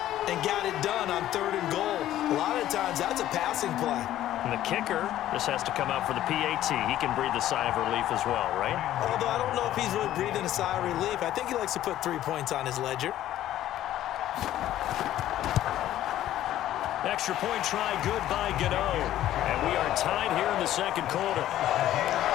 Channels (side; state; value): right; quieter; 13.0 dB